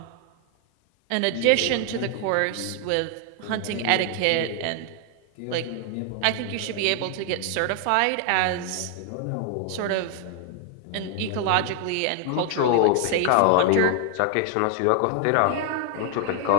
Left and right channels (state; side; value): different; both; correlation 0.00